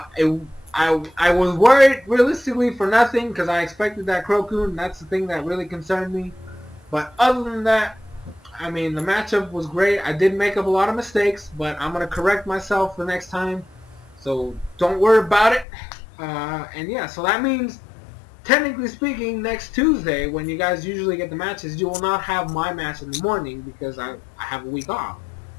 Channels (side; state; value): right; drops out; at 15.7 s